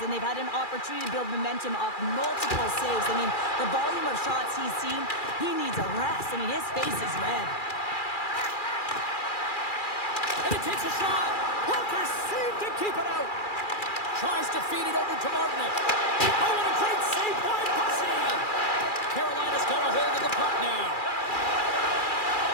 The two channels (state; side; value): late; right; 2.4 ms